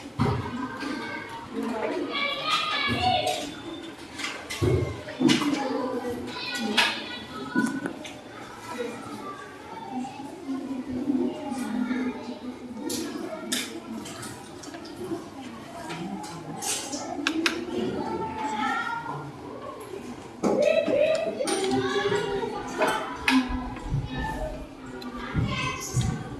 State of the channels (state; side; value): identical; both; correlation 1.00